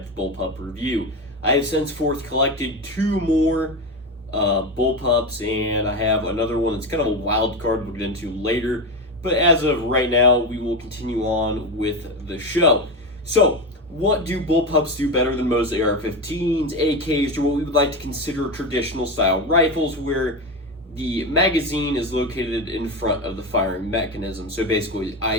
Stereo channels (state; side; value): normal; both; correlation 0.18